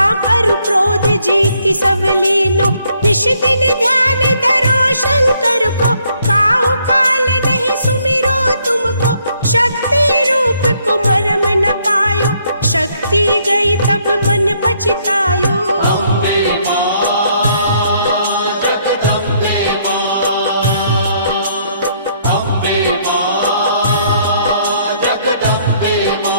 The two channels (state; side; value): inverted; both; correlation -0.69